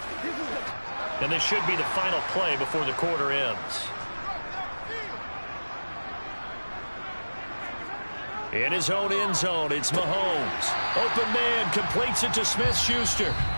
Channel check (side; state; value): both; inverted; correlation -1.00